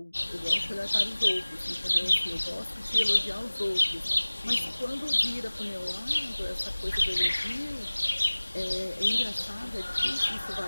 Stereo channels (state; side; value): inverted; both; correlation -1.00